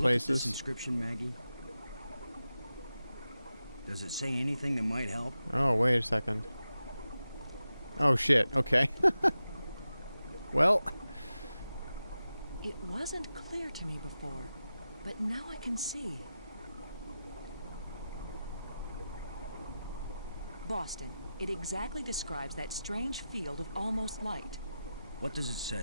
look at this places. inscription, Maggie? Does it say anything that might help? Oh, wait a second. Oh, shit. Okay. Well, It wasn't clear to me before, but now I can see. Boston. It exactly describes that strange field of almost light. What does it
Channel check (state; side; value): inverted; both; correlation -0.92